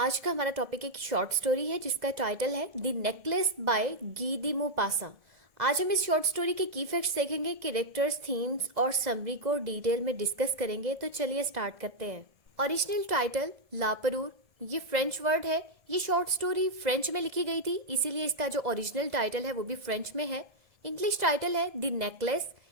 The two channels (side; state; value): left; late; 1.7 ms